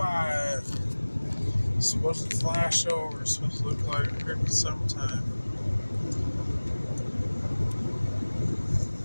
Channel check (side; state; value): both; inverted; correlation -1.00